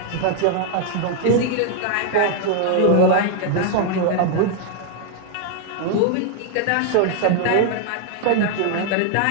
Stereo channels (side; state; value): both; different; correlation 0.00